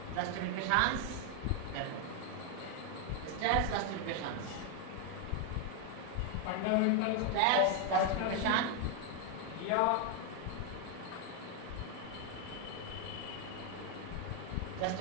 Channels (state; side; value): different; both; correlation 0.01